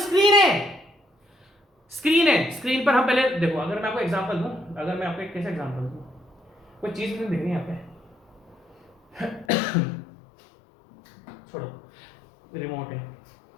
है, स्क्रीन पर हम पहले देखो, अगर मैं आपको एग्जांपल दूं, अगर मैं आपको एक कैसे एग्जांपल दूं, कोई चीज मुझे दिख रही है यहाँ पे छोड़ो, रिमोट है,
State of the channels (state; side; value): drops out; right; at 9.5 s